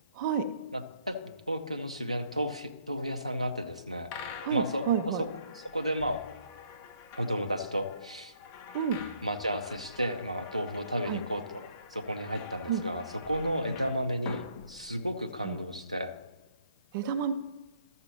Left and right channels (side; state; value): both; inverted; correlation -0.65